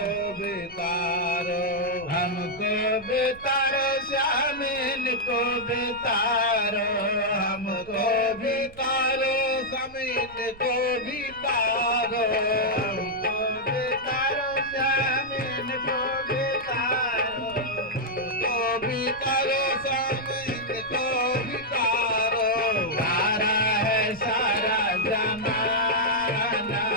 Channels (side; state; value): right; noise; rumble, 21 dB below the sound